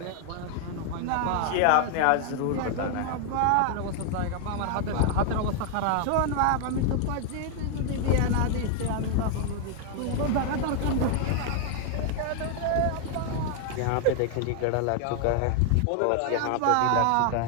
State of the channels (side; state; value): both; different; correlation 0.00